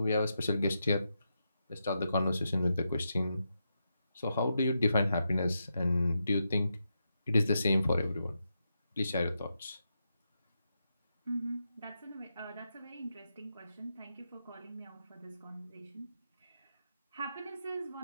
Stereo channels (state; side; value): inverted; both; correlation -0.85